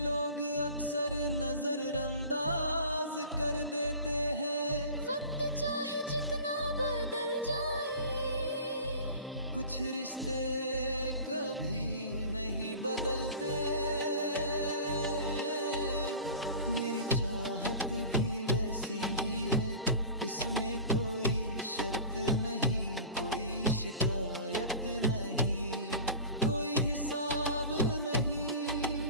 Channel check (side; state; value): both; inverted; correlation -0.37